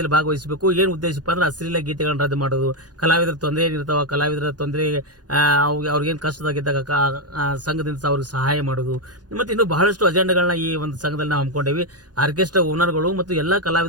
ಭಾಗವಹಿಸಬೇಕು. ಏನು ಉದ್ದೇಶಪ್ಪ ಅಂದ್ರೆ ಅಶ್ಲೀಲ ಗೀತೆಗಳನ್ನ ರದ್ದು ಮಾಡೋದು, ಕಲಾವಿದರ ತೊಂದರೆ ಏನಿರ್ತಾವ, ಕಲಾವಿದರ ತೊಂದರೆ ಅವ್ರಿಗೇನು ಕಷ್ಟದಾಗಿದ್ದಾಗ ಸಂಘದಿಂದ ಅವ್ರಿಗೆ ಸಹಾಯ ಮಾಡೋದು, ಮತ್ತೆ ಇನ್ನು ಬಹಳಷ್ಟು ಅಜೆಂಡಾಗಳನ್ನ ಈ ಒಂದು ಸಂಘದಲ್ಲಿ ನಾವು ಹಮ್ಮಿಕೊಂಡೇವಿ. ಆರ್ಕೆಸ್ಟ್ರಾ ಓನರ್ಗಳು ಮತ್ತು ಎಲ್ಲಾ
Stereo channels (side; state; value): left; late; 0.69 ms